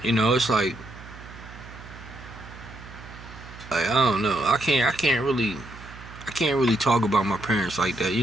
you know, it's like I don't know. I can't really talk about my parents like that, you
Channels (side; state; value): right; noise; hum, 16 dB below the sound